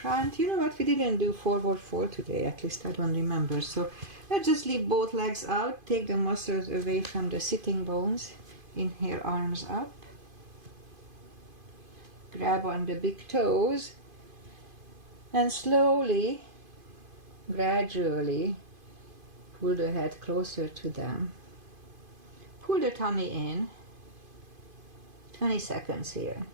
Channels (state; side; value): late; left; 2.5 ms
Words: You know what? We didn't do forward fold today. At least I don't remember. So let's just leave both legs out. Take the muscles away from the sitting bones. Inhale, arms up. Grab on the big toes. And slowly, gradually, pull the head closer to them. Pull the tummy in. 20 seconds here.